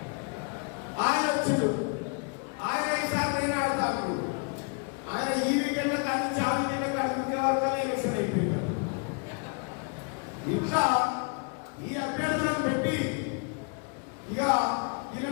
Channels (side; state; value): right; quieter; 37.2 dB